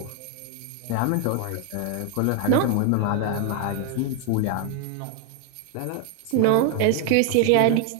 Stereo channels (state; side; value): different; both; correlation 0.01